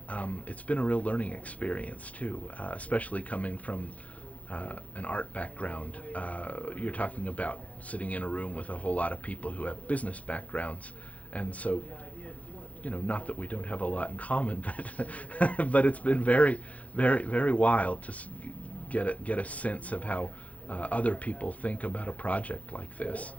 It's been a real learning experience too, especially coming from an art background. You're talking about sitting in a room with a whole lot of people who have business backgrounds, and so, you know, not that we don't have a lot in common, but but it's been very, very, very wild to get a sense of how other people think about a project like this.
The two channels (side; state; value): right; late; 0.067 ms